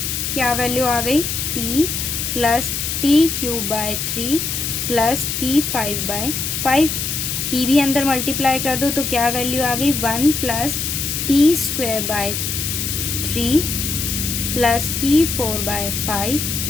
क्या वैल्यू आ गई, t plus t cube by 3 plus t5 by 5, t भी अंदर मल्टीप्लाई कर दो तो क्या वैल्यू आ गई, 1 plus t square by 3 plus t4 by 5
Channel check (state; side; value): noise; left; hiss, 2 dB below the sound